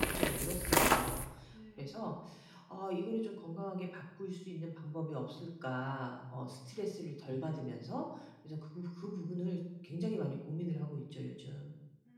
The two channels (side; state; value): both; identical; correlation 1.00